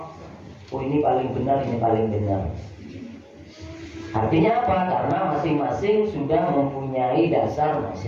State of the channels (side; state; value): both; identical; correlation 1.00